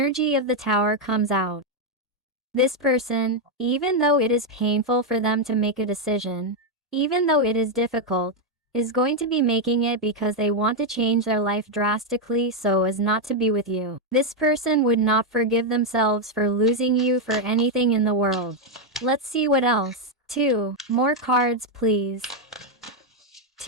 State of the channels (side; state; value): both; normal; correlation 0.02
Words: of the Tower comes out. This person, even though it is painful for them to make a decision, even though it is difficult, is going to be making it because they want to change their life drastically so as not to be with you. This person would not forgive themselves for losing you for anything in the world. Let's see what else. 2 more cards, please.